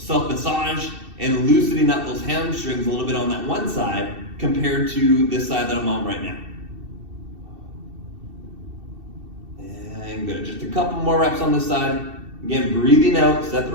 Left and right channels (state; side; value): late; left; 2.7 ms